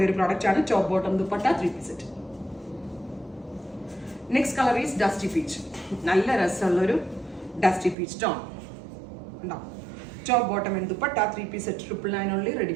ഒരു പ്രോഡക്റ്റ് ആണ്. Top bottom dupatta 3-piece set. Next colour is dusty peach. നല്ല രസമുള്ള ഒരു ഡസ്റ്റി പീച്ച് ടോൺ ഉണ്ടാവും. Top bottom and dupatta 3-piece set. 999 only, ready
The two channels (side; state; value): left; drops out; at 8.0 s